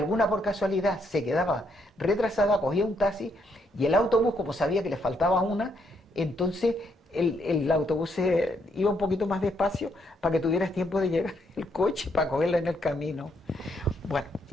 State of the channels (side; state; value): both; normal; correlation 0.74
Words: por casualidad se quedaba retrasada, cogía un taxi, y el autobús, como sabía que le faltaba una, entonces el autobús iba un poquito más despacio para que tuvieras tiempo de llegar el coche para cogerla en el camino. Bueno,